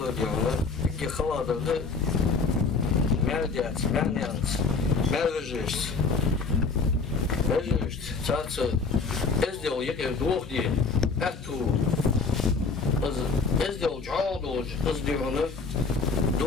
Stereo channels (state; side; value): quieter; right; 4.6 dB